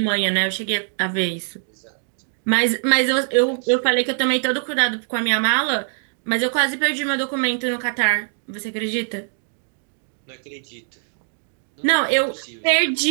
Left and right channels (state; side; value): silent; left; 57 dB below the other